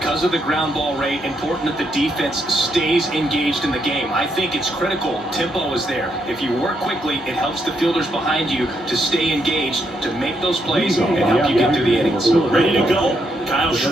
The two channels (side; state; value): both; normal; correlation 0.77